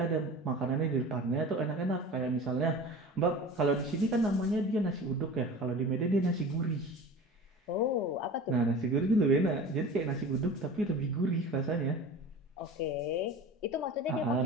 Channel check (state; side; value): normal; both; correlation 0.36